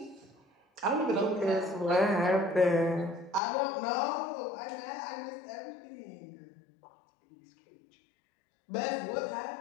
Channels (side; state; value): right; drops out; at 3.4 s